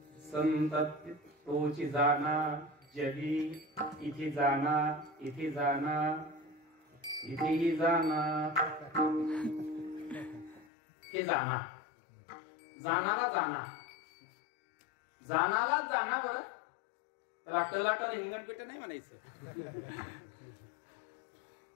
संत तोची जाना जगी, इथे जाना, इथे जाना, इथेही जाना. हे जाना, जानाला जाना, जानाला जाना. बरं त्याला टलाटल हिंगणपेट नाही म्हणायचं.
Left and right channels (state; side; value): drops out; right; at 10.7 s